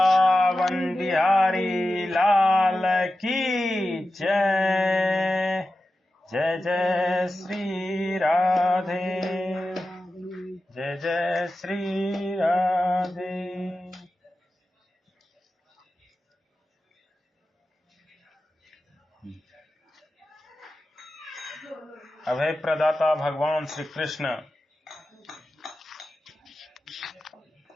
बिहारी लाल की जय। जय जय श्री राधे, जय जय श्री राधे। अभय प्रदाता भगवान श्री कृष्ण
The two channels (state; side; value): normal; both; correlation 0.93